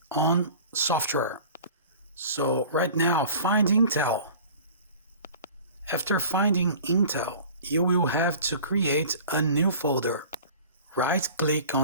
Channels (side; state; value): both; inverted; correlation -0.43